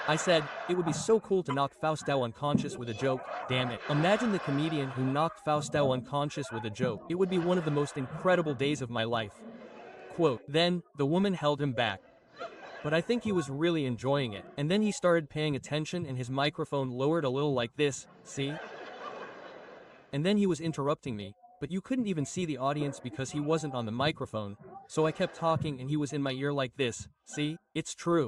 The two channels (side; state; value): both; identical; correlation 1.00